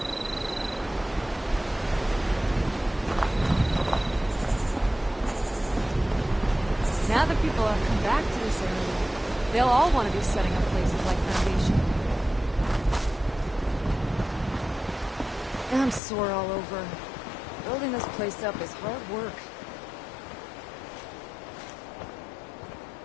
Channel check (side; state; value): right; drops out; at 16.0 s